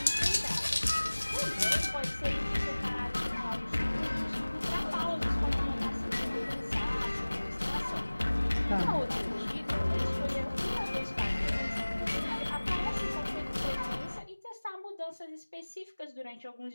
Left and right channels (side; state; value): both; inverted; correlation -1.00